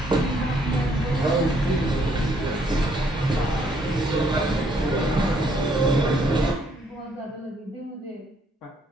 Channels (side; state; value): both; normal; correlation 0.69